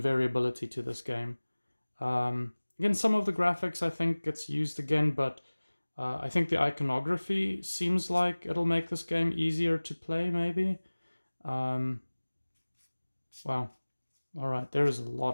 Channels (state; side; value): inverted; both; correlation -1.00